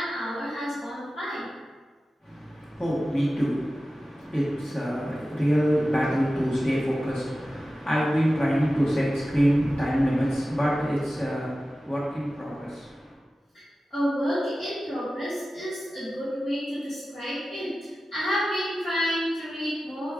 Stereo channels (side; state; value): both; normal; correlation 0.95